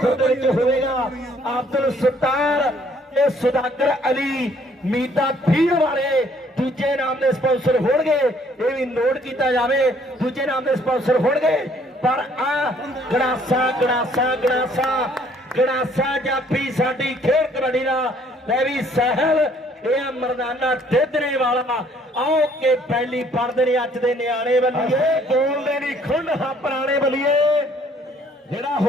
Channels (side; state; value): both; normal; correlation 0.62